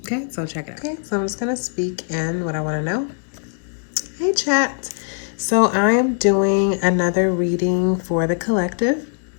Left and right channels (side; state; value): right; silent; 55 dB below the other